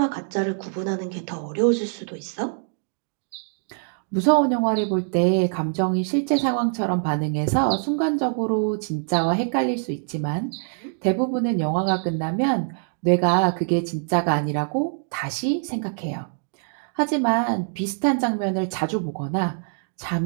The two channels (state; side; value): silent; left; digital silence